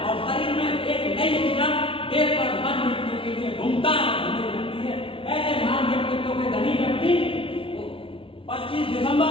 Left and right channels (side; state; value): right; late; 0.26 ms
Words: और शरीर में एक नई ऊर्जा देश पर मन मिटने के लिए घूमता है। ऐसे महान व्यक्तित्व के धनी व्यक्ति 25 दिसंबर